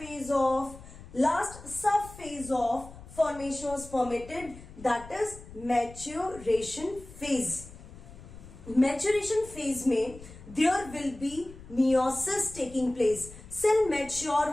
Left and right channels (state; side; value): noise; left; rumble, 17 dB below the sound